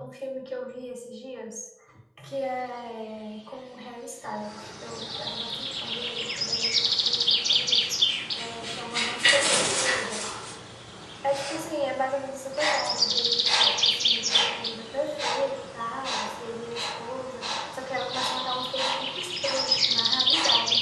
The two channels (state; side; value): identical; both; correlation 1.00